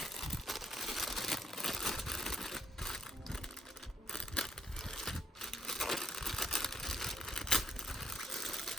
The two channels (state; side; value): normal; both; correlation 0.73